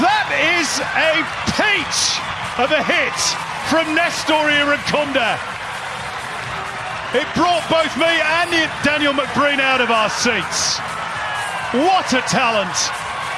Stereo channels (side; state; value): both; identical; correlation 1.00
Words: That is a peach of a hit from Nestor Irankunda. It brought both me and Daniel McBreen out of our seats. What a talent.